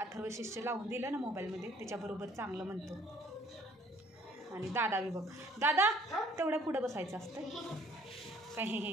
शिष्य लावून दिलं ना मोबाईलमध्ये त्याच्याबरोबर चांगलं म्हणतो. आणि दादा बी बघ, दादा तेवढ्या पुढं बसायचं असतं काय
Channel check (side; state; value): both; normal; correlation 0.58